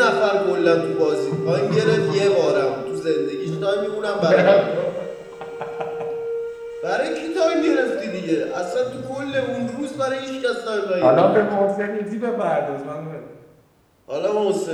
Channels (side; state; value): both; identical; correlation 1.00